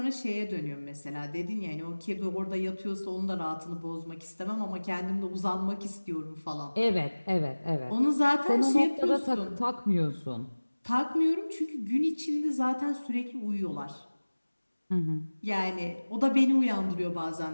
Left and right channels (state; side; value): inverted; both; correlation -1.00